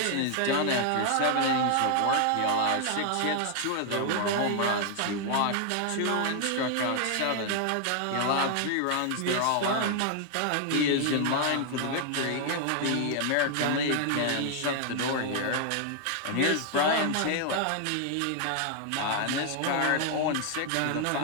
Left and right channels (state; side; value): different; both; correlation 0.00